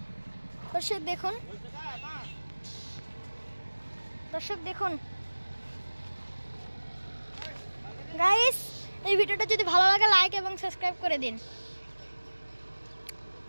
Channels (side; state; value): both; inverted; correlation -1.00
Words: দর্শক দেখুন, দর্শক দেখুন গাইস, এই ভিডিওটা যদি ভালো লাগে লাইক এবং সাবস্ক্রাইব করে দিন।